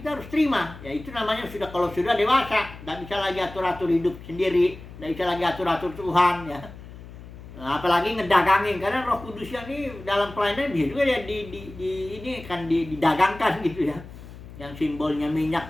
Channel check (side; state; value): left; noise; hum, 16 dB below the sound